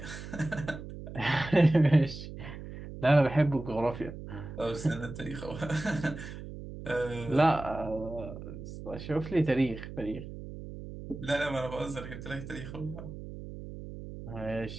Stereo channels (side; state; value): right; noise; hum, 11 dB below the sound